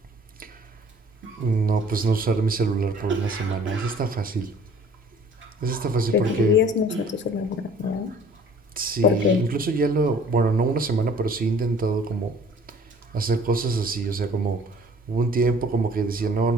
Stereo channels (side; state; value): both; normal; correlation 0.52